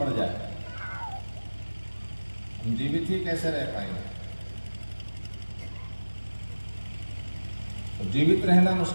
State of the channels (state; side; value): inverted; both; correlation -1.00